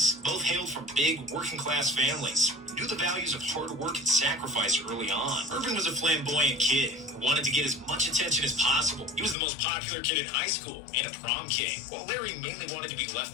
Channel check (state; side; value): drops out; right; at 9.3 s